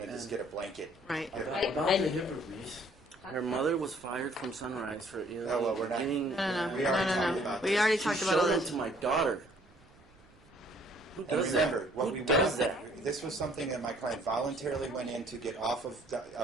to just get a blanket. Right. HIPAA. About I- the HIPAA release, her mother was fired from Sunrise for Oh, well, we're not- getting. No. We already talked about We this. already She talked about showed all them this. to my daughter. Who And does remember, that? what Who we does went, that? this was something that my client voluntarily went in to get off of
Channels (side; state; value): right; noise; rumble, 28 dB below the sound